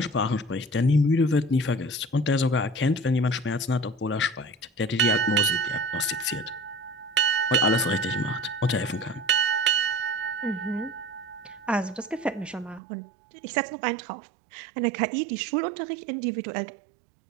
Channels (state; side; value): drops out; left; at 12.8 s